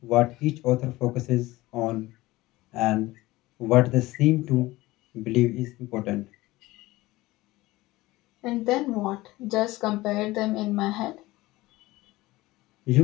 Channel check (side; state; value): right; quieter; 19.1 dB